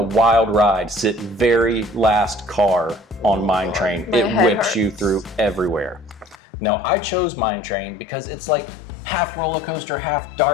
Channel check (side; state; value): right; drops out; at 6.4 s